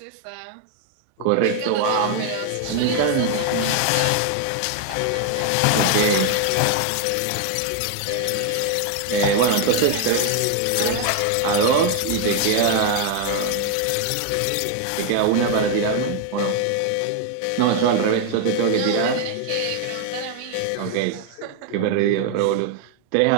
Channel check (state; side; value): different; both; correlation 0.01